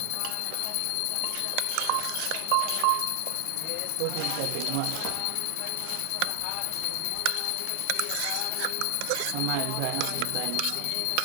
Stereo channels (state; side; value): different; both; correlation 0.00